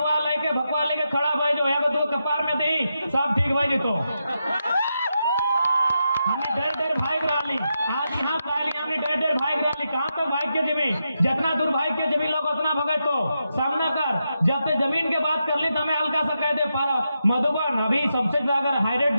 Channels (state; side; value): inverted; both; correlation -0.86